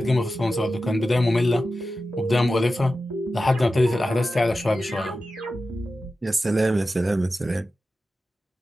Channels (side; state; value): both; normal; correlation 0.93